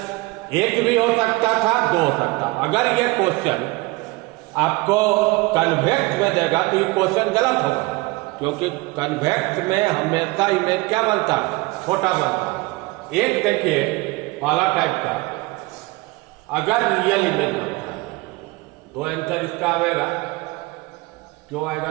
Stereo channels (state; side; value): quieter; left; 22.8 dB